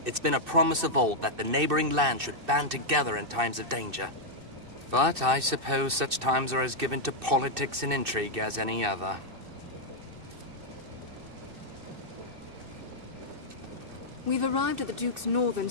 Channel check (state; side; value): late; left; 2.6 ms